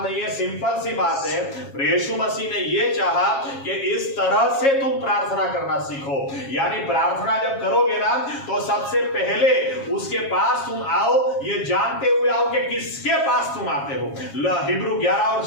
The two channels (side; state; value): right; late; 7.3 ms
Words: नहीं है, सिंपल सी बात है। यीशु मसीह ने ये चाहा कि इस तरह से तुम प्रार्थना करना सीखो। यानी प्रार्थना जब करोगे ना तो सबसे पहले उसके पास तुम आओ, ये जानते हुए आओ कि किसके पास तुम आते हो। हिब्रू 11 और